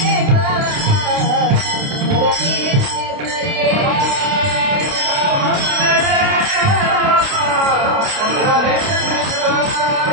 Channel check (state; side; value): late; left; 29 ms